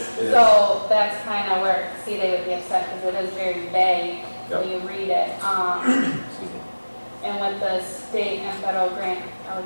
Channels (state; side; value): inverted; both; correlation -1.00